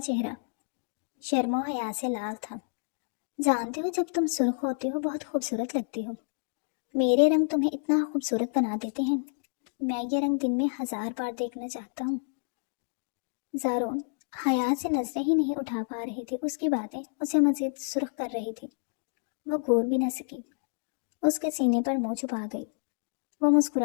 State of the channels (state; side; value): silent; right; digital silence